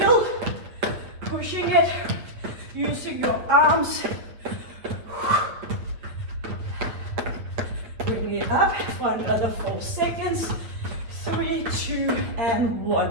pushing it, using your arms. Bring it up for another 4 seconds. 3, 2, and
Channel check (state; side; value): late; left; 9.0 ms